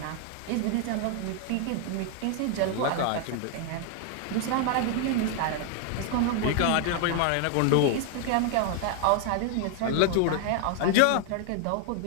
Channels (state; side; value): different; both; correlation 0.00